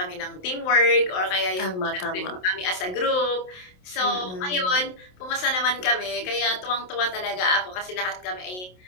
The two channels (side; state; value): right; late; 27 ms